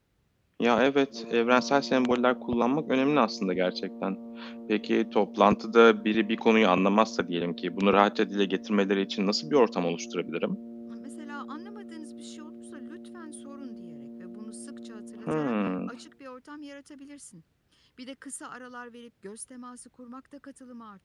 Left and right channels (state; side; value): identical; both; correlation 1.00